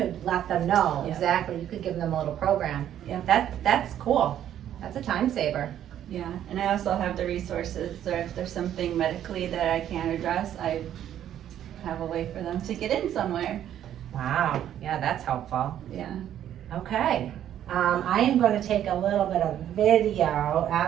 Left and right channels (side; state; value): left; quieter; 10.8 dB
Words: let them know Yeah. exactly, you could give them a little program. Yeah. That's cool, that's a time saver. Yeah, and I also have the resources, so if there's something medically that I can't address, I have a way for them to get in somewhere. Wow, yeah, that's helpful. Yeah. Okay, I am gonna take a little bit of video